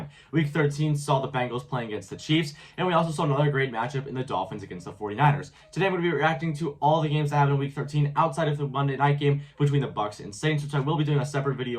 Week 13 saw the Bengals playing against the Chiefs, and we also saw another great matchup in the Dolphins against the 49ers. Today I'm going to be reacting to all the games that happened in Week 13 outside of the Monday night game between the Bucs and Saints, which I will be doing a separate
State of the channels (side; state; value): both; identical; correlation 1.00